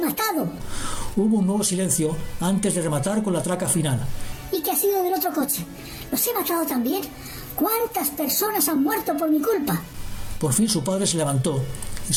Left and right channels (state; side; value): identical; both; correlation 1.00